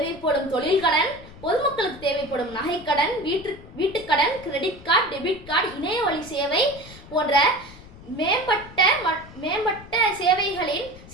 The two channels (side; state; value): left; noise; rumble, 18 dB below the sound